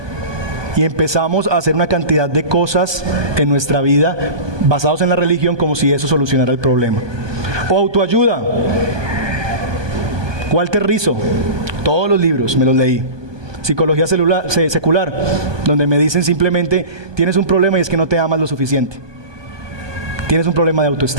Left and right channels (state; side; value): late; left; 1.2 ms